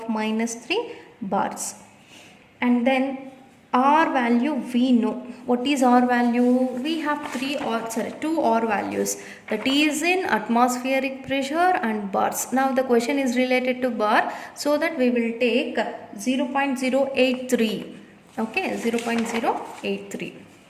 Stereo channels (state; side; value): identical; both; correlation 1.00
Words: minus 3 bars. And then R value we know. What is R value? We have two R values, that is in atmospheric pressure and bars. Now the question is related to bar, so that we will take 0.083. Okay, 0.083.